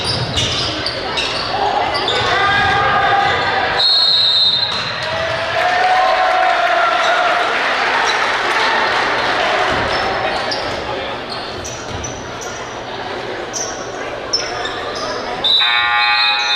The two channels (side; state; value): both; identical; correlation 1.00